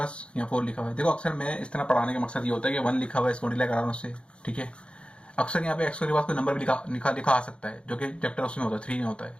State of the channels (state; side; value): late; right; 0.057 ms